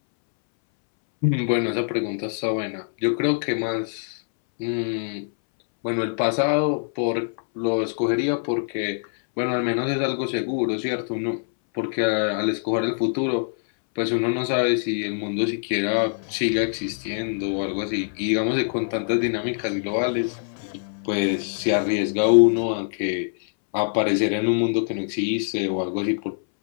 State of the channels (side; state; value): right; silent; 62 dB below the other